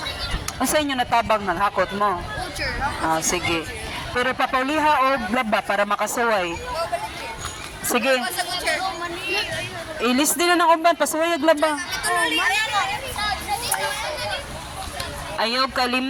Unsa inyo natabang nang hakot mo? Ah, sige. Pero papauliha og laba para makasuway. Sige. Ilis din na ng uban, pasuway og laba. Ayaw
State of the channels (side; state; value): both; identical; correlation 1.00